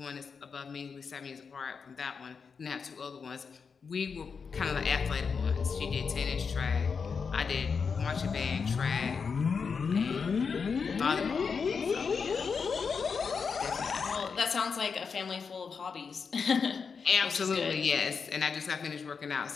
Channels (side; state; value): right; quieter; 5.6 dB